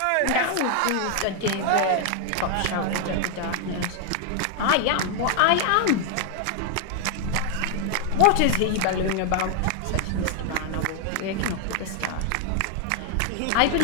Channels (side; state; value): both; different; correlation 0.00